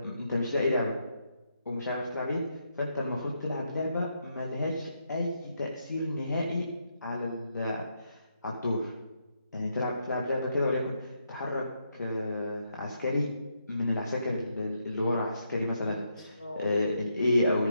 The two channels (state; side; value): inverted; both; correlation -0.79